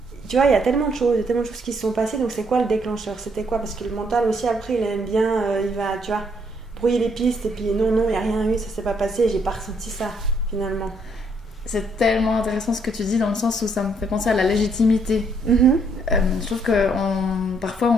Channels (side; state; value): both; normal; correlation 0.70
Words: tu vois, il y a tellement de choses qui se sont passées, donc c'est quoi le déclencheur? C'était quoi? Parce que le mental aussi, après, il aime bien, il va, tu vois, brouiller les pistes, et puis non, il n'y a rien eu, ça s'est pas passé, j'ai pas ressenti ça, finalement. C'est tellement intéressant ce que tu dis dans le sens où ça me fait penser à la légitimité. Je trouve que parfois